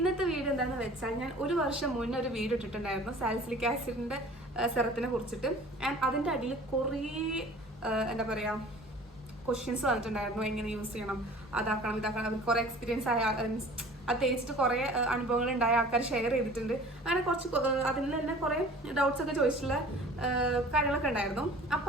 വീഡിയോ എന്താണെന്ന് വെച്ചാൽ ഞാൻ ഒരു വർഷം മുന്നേ ഒരു വീഡിയോ ഇട്ടിട്ടുണ്ടായിരുന്നു സാലിസിലിക് ആസിഡിന്റെ സെറത്തിനെ കുറിച്ചിട്ട്. ആൻഡ് അതിന്റെ അടിയിൽ കുറേ എന്താ പറയാ ക്വസ്റ്റ്യൻസ് വന്നിട്ടുണ്ടായിരുന്നു. എങ്ങനെ യൂസ് ചെയ്യണം, അതാക്കണം ഇതാക്കണം, കുറേ എക്സ്പീരിയൻസ് ആയ അത് തേച്ചിട്ട് കുറേ അനുഭവങ്ങൾ ഉണ്ടായ ആൾക്കാർ ഷെയർ ചെയ്തിട്ടുണ്ട്. അങ്ങനെ കുറച്ച് അതിൽ തന്നെ കുറേ ഡൗട്ട്സ് ഒക്കെ ചോദിച്ചിട്ടുള്ള കാര്യങ്ങളൊക്കെ ഉണ്ടായിരുന്നു.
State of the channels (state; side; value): normal; both; correlation 0.46